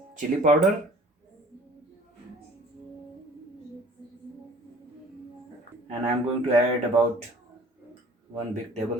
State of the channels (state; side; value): normal; both; correlation 0.50